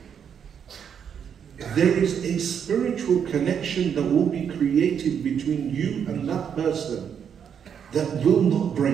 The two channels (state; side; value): quieter; left; 7.9 dB